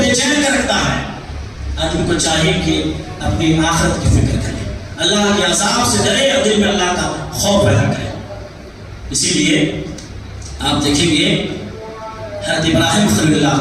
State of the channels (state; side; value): identical; both; correlation 1.00